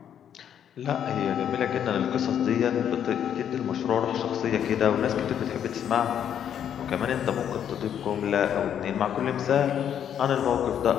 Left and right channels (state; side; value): quieter; right; 9.3 dB